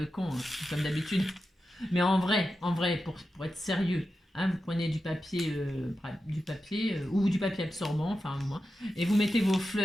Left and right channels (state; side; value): normal; both; correlation 0.91